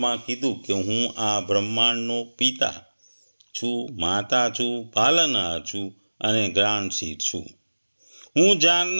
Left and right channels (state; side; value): inverted; both; correlation -1.00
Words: કીધું કે હું આ બ્રહ્માંડનો પિતા છું, માતા છું, પાલનહાર છું અને જ્ઞાનશીર છું. હું